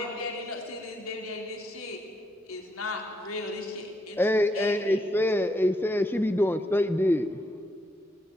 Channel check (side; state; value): both; normal; correlation 0.77